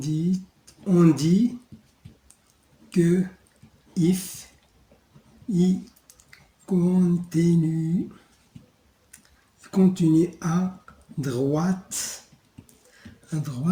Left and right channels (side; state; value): both; identical; correlation 1.00